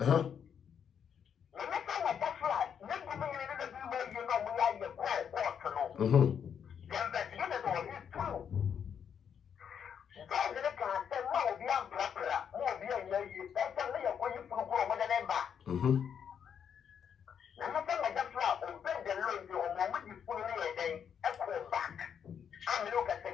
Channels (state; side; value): quieter; right; 7.8 dB